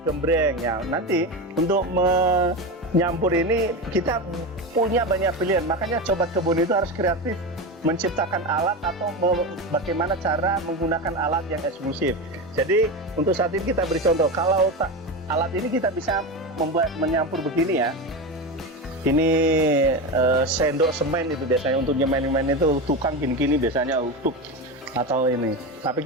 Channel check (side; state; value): both; normal; correlation 0.20